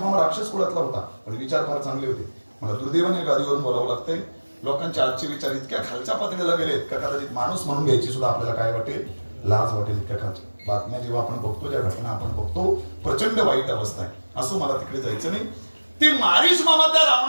मामा राक्षस कुळातला होता, पण विचार फार चांगले होते. मला दुर्दैवाने गादीवरून बोलावं लागतंय, लोकांचे आजचे विचार इतक्या खालच्या पातळीला गेलेत का कदाचित माणूस म्हणून घ्यायची सुद्धा आपल्याला काय वाटेल, लाज वाटेल. इतक्या खालच्या बातम्या जेव्हा आपण बघतो, ज्या घटना आपण बघतो, प्रचंड वाईट अवस्था आहे. असं मला तिकडे जायचं नाही. ते मारीच मामा त्या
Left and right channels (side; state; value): both; inverted; correlation -1.00